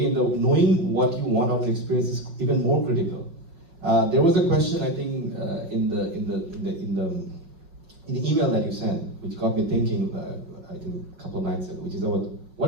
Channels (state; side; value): late; left; 5.4 ms